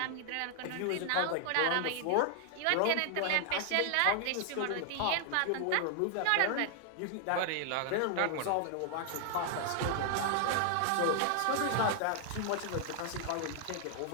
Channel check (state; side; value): different; both; correlation 0.00